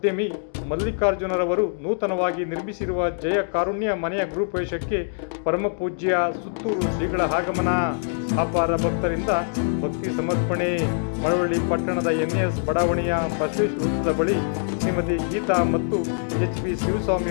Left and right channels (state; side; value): silent; right; digital silence